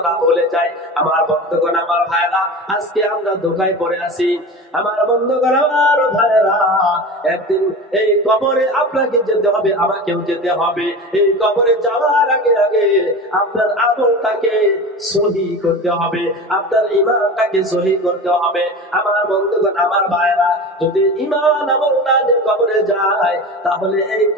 ভুলে যায়। আমার বন্ধুগণ, আমার ভাইরা, আজকে আমরা ধোঁকায় পড়ে আছি। আমার বন্ধুগণ, আমার ভাইরা, একদিন এই কবরে আপনাকে যেতে হবে, আমাকেও যেতে হবে। এই কবরে যাওয়ার আগে আগে আপনার আমলটাকে সহি করতে হবে, আপনার ঈমানটাকে সহি করতে হবে। আমার বন্ধুগণ, আমার ভাইরা, যদি ঈমান আমল না নিয়ে কবরে যায়, তাহলে এই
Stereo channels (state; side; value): normal; both; correlation 0.30